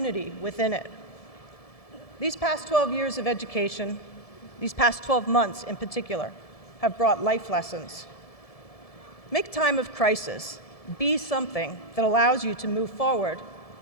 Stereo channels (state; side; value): late; right; 1.7 ms